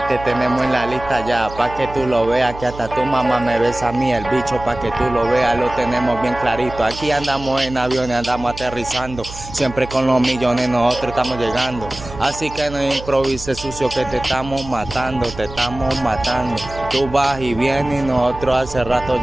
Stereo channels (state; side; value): noise; right; hum, 13 dB below the sound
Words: te tenemos en la lista ya, pa' que tú lo veas, que hasta tu mamá me besa a mí el bicho, pa' que tú lo veas, lo tenemos bien clarito. Aquí andamos en aviones, andamos aterrizando, siempre con los millones nosotros estamos llegando. Así que no improvises sucio que te estamos matando, te estamos matando. Tú vas y vienes y nosotros hace rato